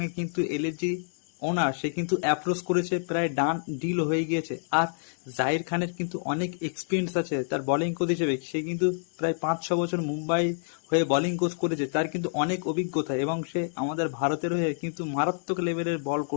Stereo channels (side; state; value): right; silent; digital silence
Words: কিন্তু এলএসজি ওনার সে কিন্তু অ্যাপ্রোচ করেছে, প্রায় ডান ডিল হয়ে গিয়েছে। আর জাহির খানের কিন্তু অনেক এক্সপিরিয়েন্স আছে তার বোলিং কোচ হিসেবে। সে কিন্তু প্রায় 5-6 বছর মুম্বাই হয়ে বোলিং কোচ করেছে, তার কিন্তু অনেক অভিজ্ঞতা এবং সে আমাদের ভারতের হয়ে কিন্তু মারাত্মক লেভেলের বল